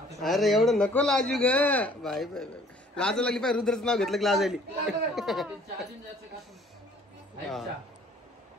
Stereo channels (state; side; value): normal; both; correlation 0.56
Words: अरे एवढं नको लाजू ग बाई. बाई लाज लागली पाय. रुद्रच नाव घेतलं की लाज आली.